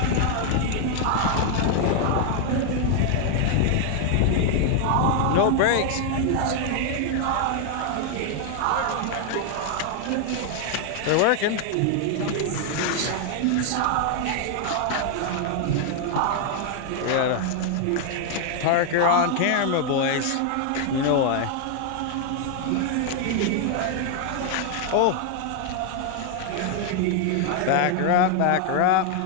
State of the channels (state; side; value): different; both; correlation 0.00